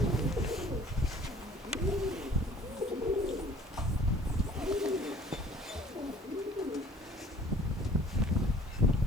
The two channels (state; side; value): normal; both; correlation 0.52